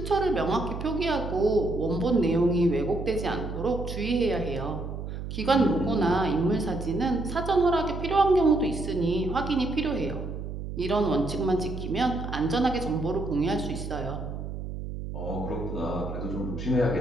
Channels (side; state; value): right; noise; hum, 7 dB below the sound